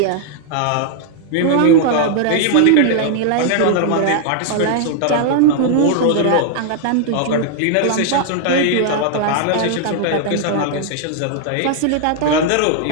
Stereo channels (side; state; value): both; different; correlation -0.01